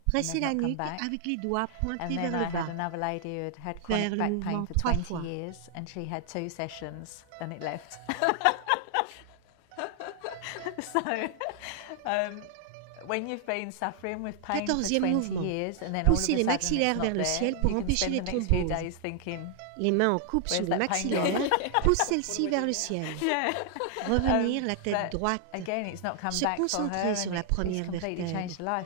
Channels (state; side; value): different; both; correlation 0.00